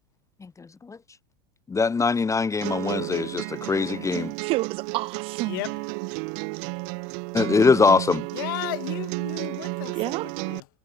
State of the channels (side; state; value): both; normal; correlation 0.55